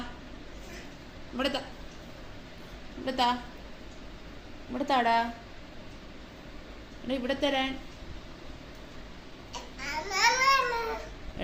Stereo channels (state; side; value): identical; both; correlation 1.00